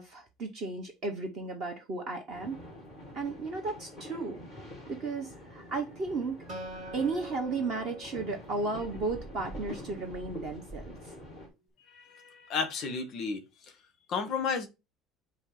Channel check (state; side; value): normal; both; correlation 0.37